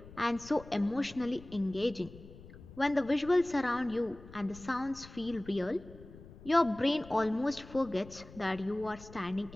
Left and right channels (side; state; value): left; noise; rumble, 18 dB below the sound